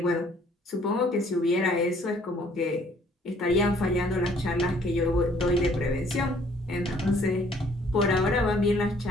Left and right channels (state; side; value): normal; both; correlation 0.60